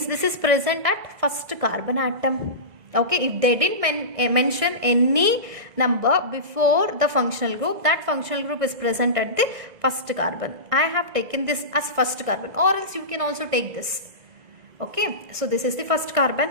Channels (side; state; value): left; late; 1.6 ms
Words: this is present at first carbon atom. Okay, if they didn't mention any number before the functional group, that functional group is present at the first carbon. I have taken this as first carbon, or else you can also take this. Okay, so this is the first carbon,